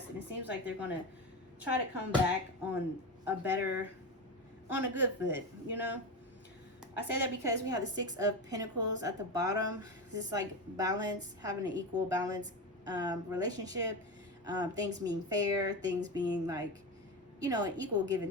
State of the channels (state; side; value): normal; both; correlation 0.20